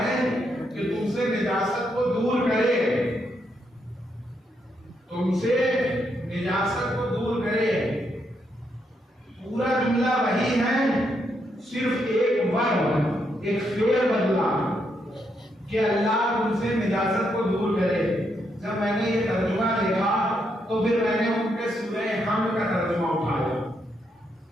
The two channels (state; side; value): normal; both; correlation 0.78